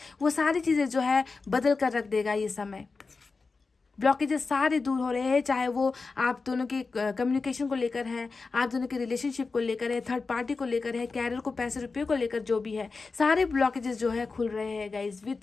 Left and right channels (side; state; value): right; quieter; 4.2 dB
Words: वो सारी चीज़ें जो है बदल कर रख देगा ये समय। ब्लॉकेजेस सारे दूर हो रहे हैं, चाहे वो आप दोनों के कम्युनिकेशन को लेकर है, आप दोनों के रिलेशनशिप को लेकर है, थर्ड पार्टी को लेकर है, कैरियर को, पैसे रुपये को लेकर, जो भी है, सारे ब्लॉकेजेस जो है खुल रहे हैं गाइज